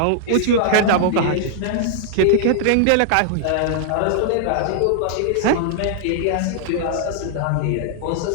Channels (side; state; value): both; different; correlation -0.01